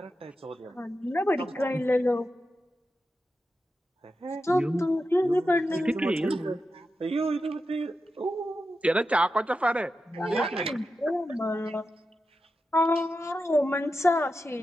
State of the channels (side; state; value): both; normal; correlation 0.90